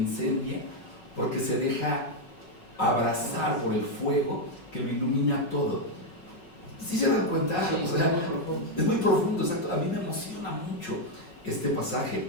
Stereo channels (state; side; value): late; right; 5.4 ms